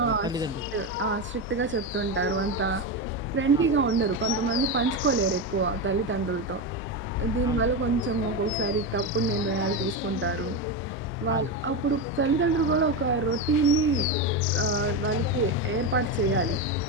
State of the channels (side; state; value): both; normal; correlation 0.14